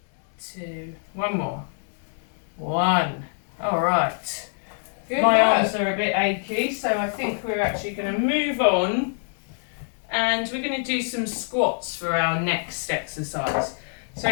2, one more. 1. Alright. Good My work. arms are a bit achy, so I think we're actually going to move on and we're going to do some squats for our next exercise.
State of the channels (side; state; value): right; silent; 62 dB below the other